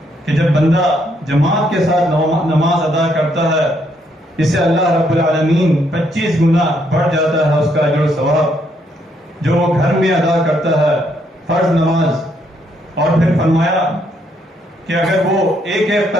کہ جب بندہ جماعت کے ساتھ نماز ادا کرتا ہے، اسے اللہ رب العالمین 25 گنا بڑھ جاتا ہے اس کا اجر و ثواب جو وہ گھر میں ادا کرتا ہے فرض نماز. اور پھر فرمایا کہ اگر وہ ایک ایک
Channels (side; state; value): both; normal; correlation 0.73